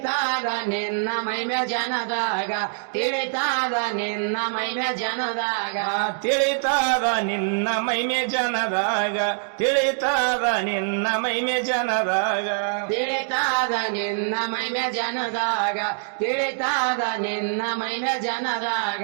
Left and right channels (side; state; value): left; silent; digital silence